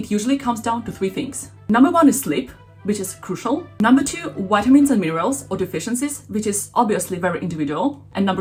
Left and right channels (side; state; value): both; identical; correlation 1.00